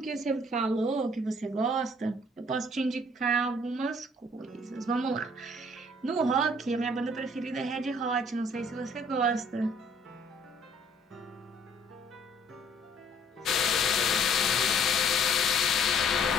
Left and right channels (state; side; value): normal; both; correlation 0.59